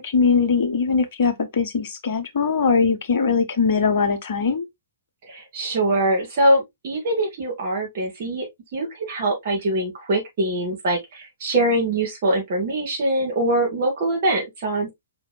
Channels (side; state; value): both; inverted; correlation -0.49